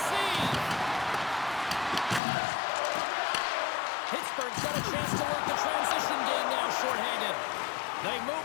save. Pittsburgh's got a chance to work the transition game now short-handed. They move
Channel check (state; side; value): drops out; right; at 2.2 s